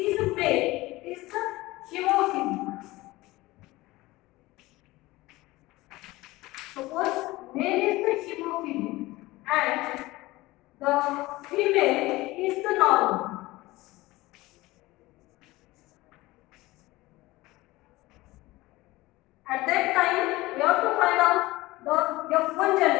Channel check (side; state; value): right; quieter; 19.5 dB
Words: male is the hemophilia. Suppose male is the hemophilia and the female is the normal. At that time, we have to find out the F1